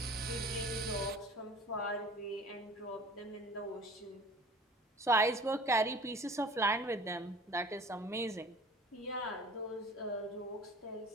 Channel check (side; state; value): both; normal; correlation 0.45